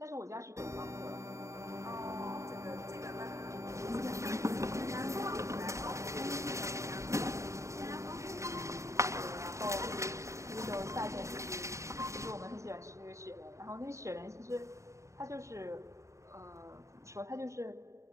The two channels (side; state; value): left; late; 0.14 ms